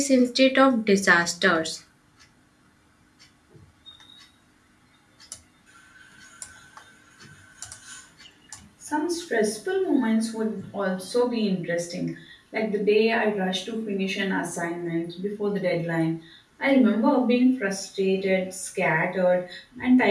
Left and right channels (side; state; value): both; identical; correlation 1.00